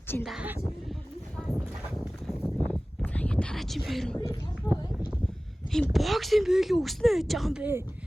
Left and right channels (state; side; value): normal; both; correlation 0.98